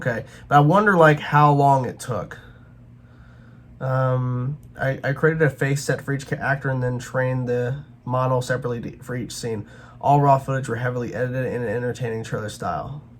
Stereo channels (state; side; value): identical; both; correlation 1.00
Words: But I wonder, like, how long it took. I created a face set for each actor and then trained the model separately for each scene. All raw footage were heavily edited in an entertaining trailer style.